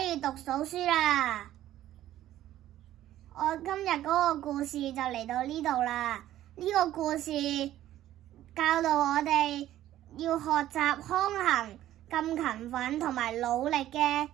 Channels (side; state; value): left; quieter; 13.2 dB